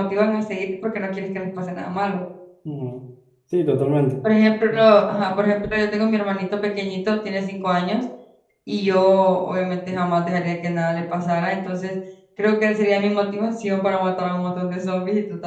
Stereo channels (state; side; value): identical; both; correlation 1.00